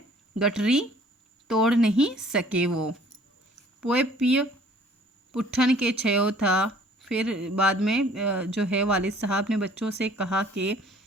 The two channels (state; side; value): normal; both; correlation 0.55